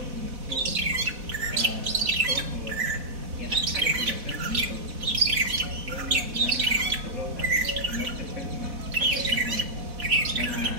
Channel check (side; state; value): left; late; 4.1 ms